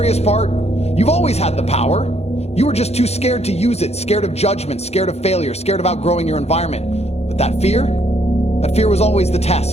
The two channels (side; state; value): right; late; 0.31 ms